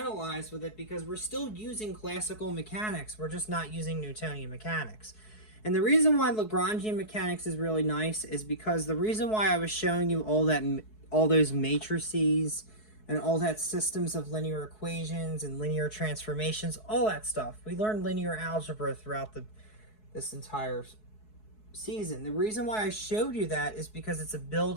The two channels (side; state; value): right; late; 4.7 ms